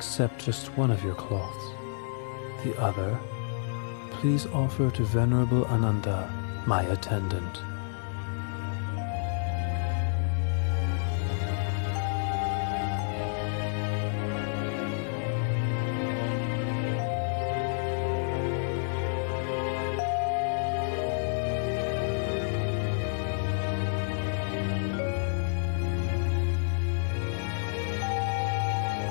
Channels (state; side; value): silent; right; digital silence